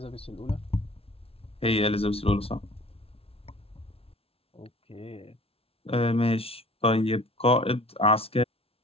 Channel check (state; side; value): late; right; 0.28 ms